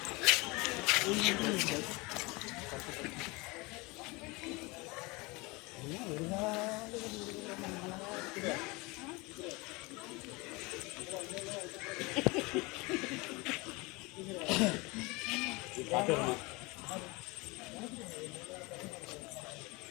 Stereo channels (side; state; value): right; quieter; 25.2 dB